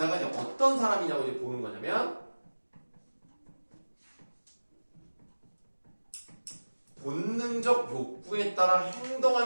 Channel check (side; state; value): both; inverted; correlation -1.00